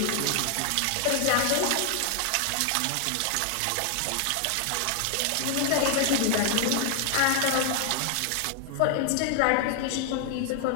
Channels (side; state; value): both; different; correlation 0.00